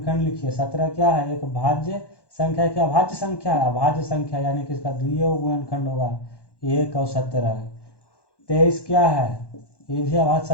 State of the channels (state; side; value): late; right; 1.1 ms